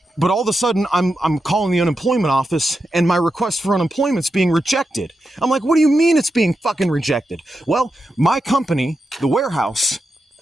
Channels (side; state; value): both; normal; correlation 0.88